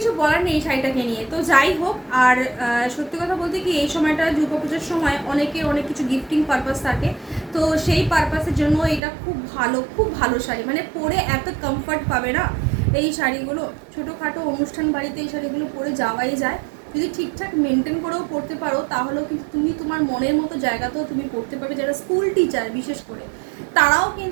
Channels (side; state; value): left; drops out; at 9.0 s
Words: বলার নেই এই শাড়িটাকে নিয়ে। তো যাই হোক, আর সত্যি কথা বলতে কি, এই সময়টা দুর্গাপুজোর সময় অনেকে অনেক কিছু গিফটিং পারপাস থাকে, তো সেই পারপাসের জন্য এটা খুব ভালো শাড়ি। পরে এত কমফর্ট পাবে না এই শাড়িগুলো। ছোটোখাটো অনুষ্ঠান বাড়িতে এই শাড়িগুলো পরে যাওয়াই যায়। যদি ঠিকঠাক মেনটেন করেও পড়তে পারো তাহলেও কিন্তু তুমি তোমার মনের মতো জায়গাতেও তুমি পড়তে পারবে। যারা স্কুল টিচার বিশেষ করে, তারাও